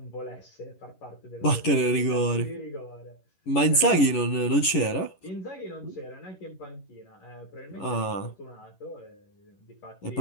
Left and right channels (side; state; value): right; late; 11 ms